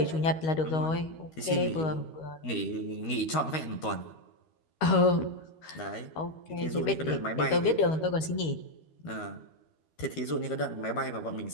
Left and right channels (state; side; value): late; right; 13 ms